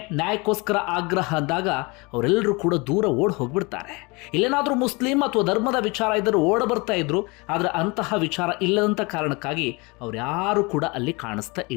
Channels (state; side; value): quieter; right; 27.1 dB